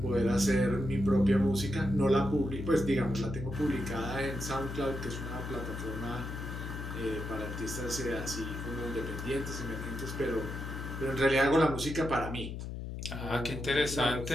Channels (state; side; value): noise; left; hum, 6 dB below the sound